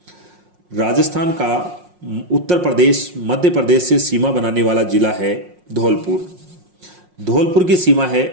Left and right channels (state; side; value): late; left; 5.6 ms